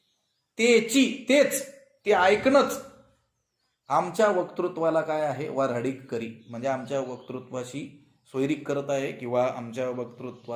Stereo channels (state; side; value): identical; both; correlation 1.00